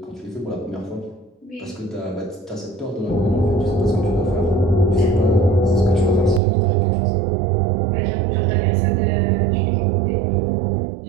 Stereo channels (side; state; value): left; drops out; at 6.4 s